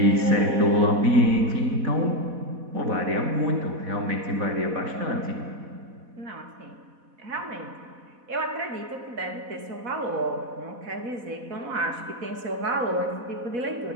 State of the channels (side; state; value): left; late; 4.1 ms